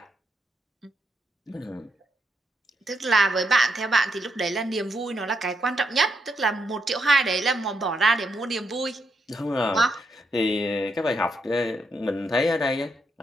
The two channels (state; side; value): normal; both; correlation 0.80